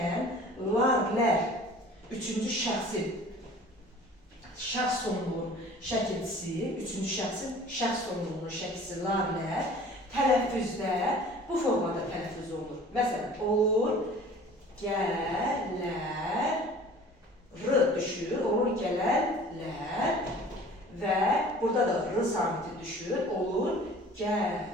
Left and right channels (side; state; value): both; normal; correlation 0.46